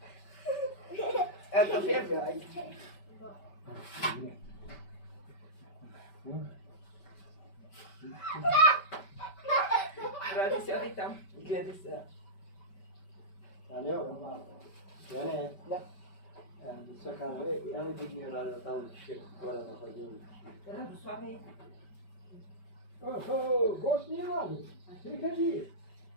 Ето фер, бе, айде. Добре. Ради сядай там. Гледай сега. Алло, Яне, Да. да се казва, я ми дигни радио там, ще горе на ходилника. Радославе. Гост няма ли? Ти кажи.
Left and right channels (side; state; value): right; late; 5.2 ms